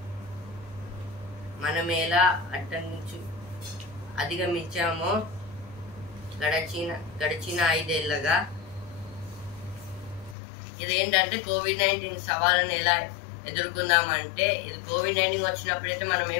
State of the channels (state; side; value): drops out; right; at 10.4 s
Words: మనమేలా అధిగమించామో గడిచిన 5 ఏళ్ళగా. ఇదేంటంటే కోవిడ్-19 సవాళ్ళను ఎలా ఎదుర్కొందామంటే ఇది కోవిడ్-19 వచ్చినప్పుడైతే మనం